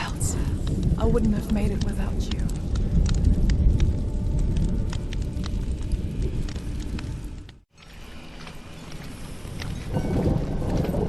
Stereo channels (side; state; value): both; identical; correlation 1.00